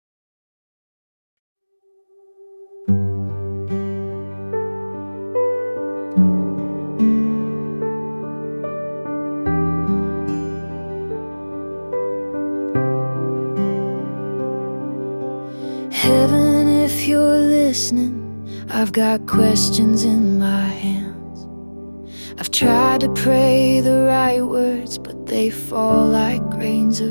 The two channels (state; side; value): inverted; both; correlation -1.00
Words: Heaven, if you're listening, I've got questions in my hands. I've tried to pray the right words, but they fall like grains